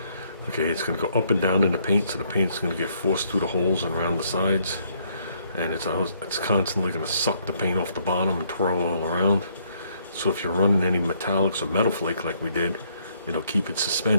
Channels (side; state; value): both; inverted; correlation -0.69